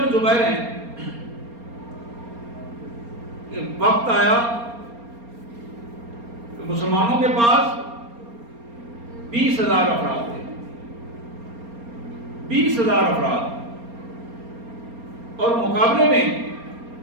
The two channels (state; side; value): late; left; 4.3 ms